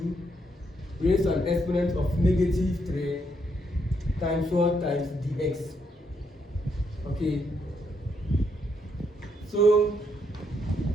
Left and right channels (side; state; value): both; normal; correlation 0.76